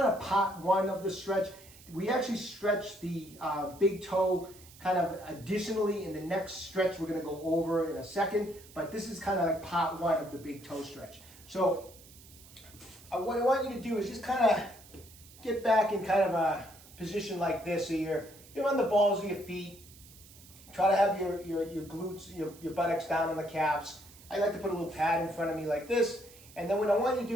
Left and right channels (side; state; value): right; noise; hiss, 21 dB below the sound